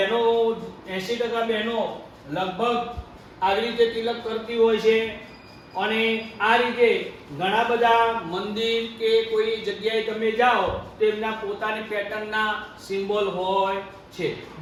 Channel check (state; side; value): identical; both; correlation 1.00